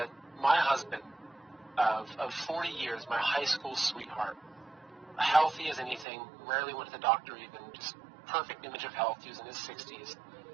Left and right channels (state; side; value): drops out; left; at 6.1 s